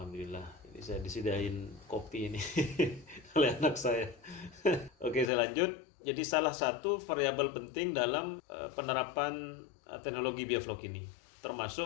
ini saya disediain kopi ini oleh anak saya. Oke, saya lanjut. Jadi salah satu variabel penting dalam penerapan teknologi biovlog ini,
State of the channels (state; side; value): drops out; right; at 5.3 s